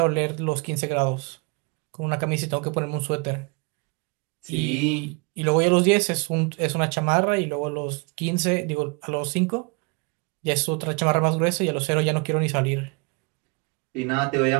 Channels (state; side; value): quieter; left; 32.0 dB